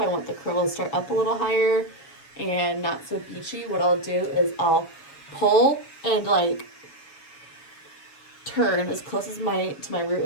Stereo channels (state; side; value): late; right; 7.1 ms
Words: I want the curl to start up a little higher and not so beachy, what I'll do is I'll pull and like turn as close as to my root